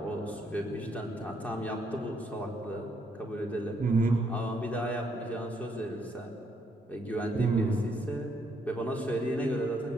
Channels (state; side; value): normal; both; correlation 0.72